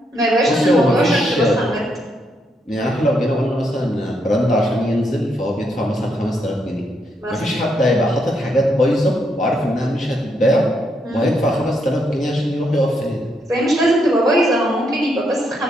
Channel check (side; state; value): both; normal; correlation 0.78